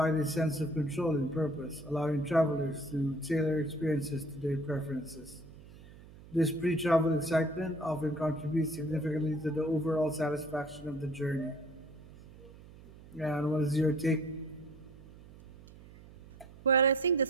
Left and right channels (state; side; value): noise; right; hum, 19 dB below the sound